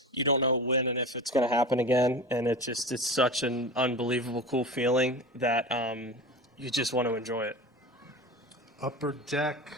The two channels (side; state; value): both; normal; correlation 0.31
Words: you don't know when and if it's going to happen again, and it's such an unbelievable cool feeling that you just want to enjoy it. Upper deck